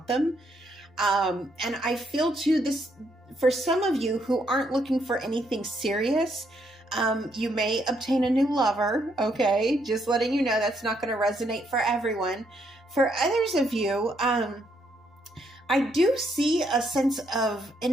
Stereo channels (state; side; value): normal; both; correlation 0.74